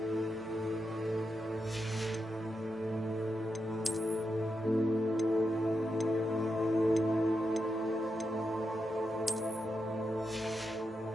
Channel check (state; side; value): normal; both; correlation 0.86